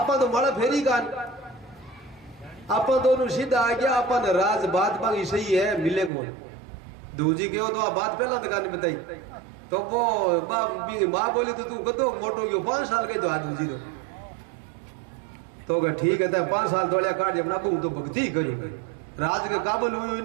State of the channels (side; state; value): left; drops out; at 6.1 s